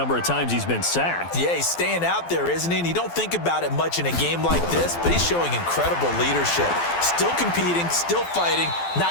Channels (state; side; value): late; right; 12 ms